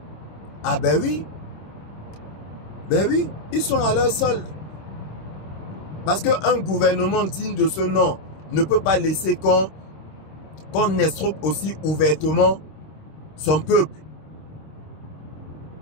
Ah ben oui. Ben oui, ils sont à leur solde. Parce qu'un gouvernement digne de ce nom ne peut pas laisser qu'on escroque aussi ouvertement son peuple.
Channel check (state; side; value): late; right; 26 ms